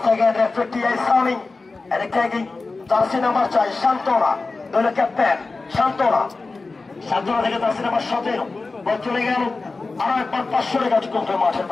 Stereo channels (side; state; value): right; quieter; 3.7 dB